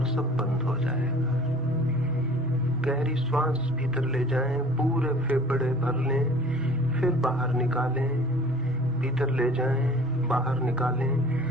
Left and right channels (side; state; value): both; normal; correlation 0.47